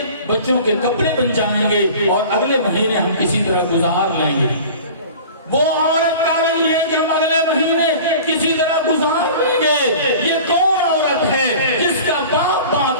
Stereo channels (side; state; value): both; inverted; correlation -0.41